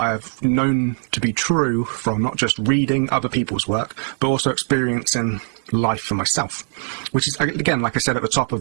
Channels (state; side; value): silent; left; digital silence